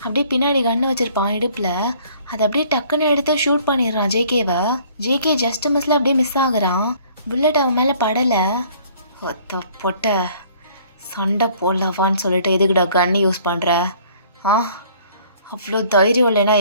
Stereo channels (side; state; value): both; inverted; correlation -0.57